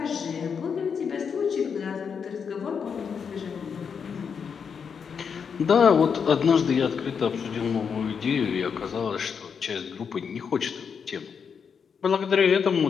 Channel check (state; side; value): quieter; right; 6.5 dB